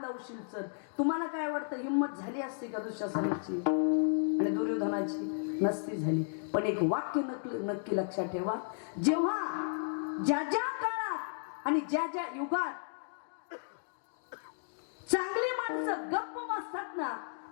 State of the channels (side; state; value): right; silent; digital silence